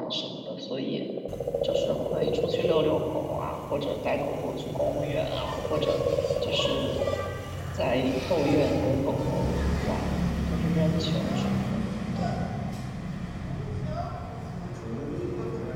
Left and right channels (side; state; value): both; identical; correlation 1.00